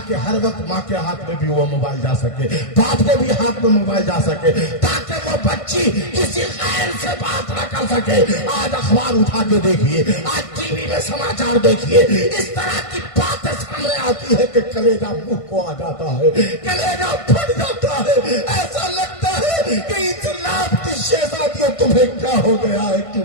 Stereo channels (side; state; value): right; late; 1.5 ms